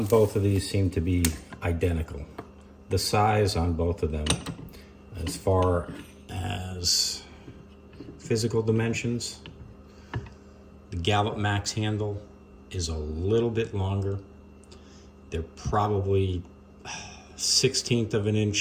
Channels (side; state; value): both; identical; correlation 1.00